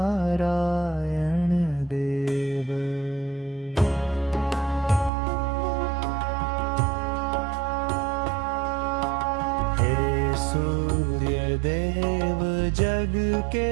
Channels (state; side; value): drops out; left; at 5.1 s